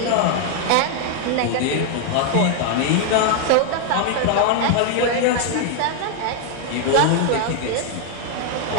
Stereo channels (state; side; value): different; both; correlation 0.00